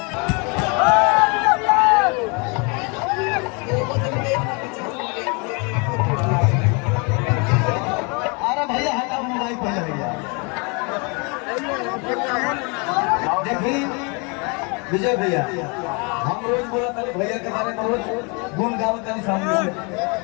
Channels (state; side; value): quieter; right; 32.0 dB